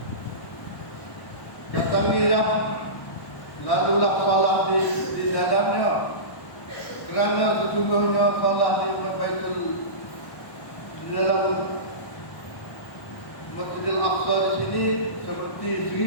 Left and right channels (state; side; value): late; right; 1.1 ms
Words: Datangilah, lalulah salat di dalamnya, kerana sesungguhnya salat di Baitul di dalam Masjidil Aqsa di sini seperti